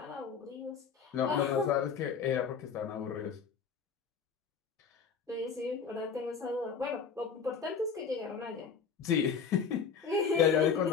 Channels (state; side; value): quieter; right; 6.2 dB